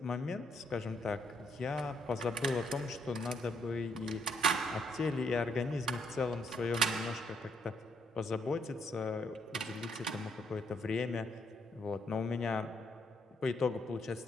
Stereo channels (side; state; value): both; normal; correlation 0.73